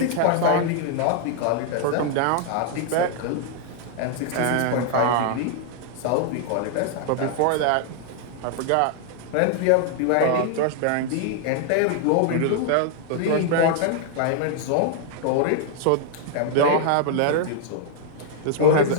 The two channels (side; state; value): both; different; correlation 0.00